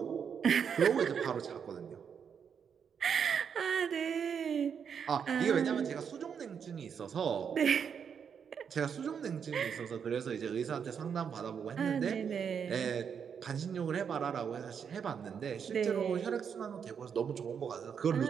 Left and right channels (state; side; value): quieter; left; 7.2 dB